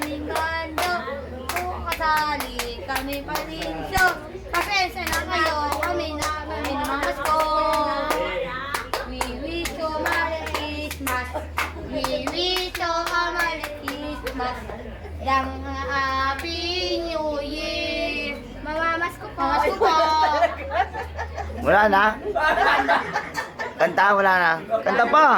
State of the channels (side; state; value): both; identical; correlation 1.00